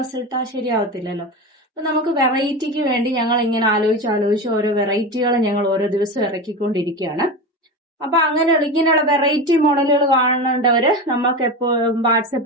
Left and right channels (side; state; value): both; normal; correlation 0.23